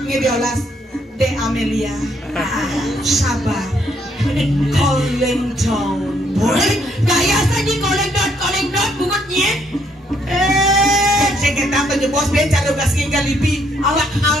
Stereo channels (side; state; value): both; normal; correlation 0.70